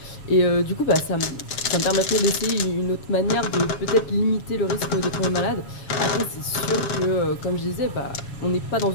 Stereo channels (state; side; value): late; right; 7.2 ms